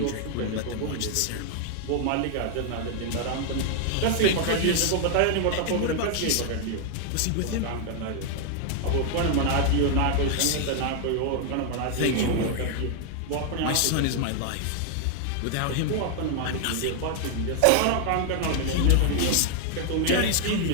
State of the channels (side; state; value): both; different; correlation 0.00